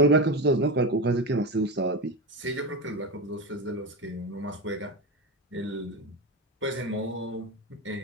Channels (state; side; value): normal; both; correlation 0.18